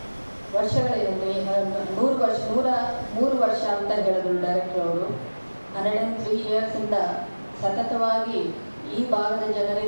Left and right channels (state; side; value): inverted; both; correlation -1.00